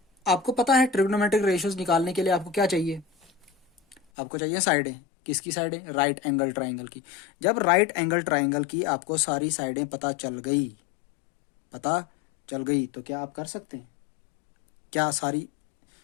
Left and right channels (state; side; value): drops out; right; at 4.0 s